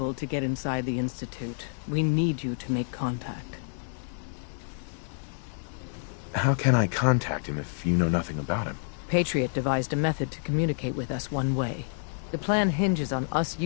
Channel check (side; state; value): right; silent; digital silence